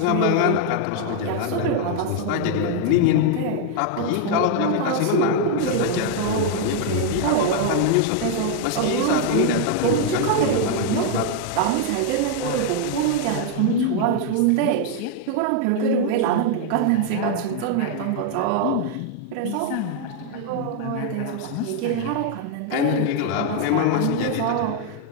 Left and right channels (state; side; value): different; both; correlation 0.00